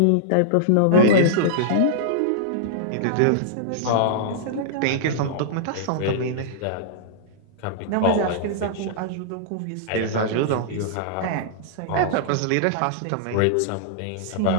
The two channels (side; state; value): both; different; correlation -0.02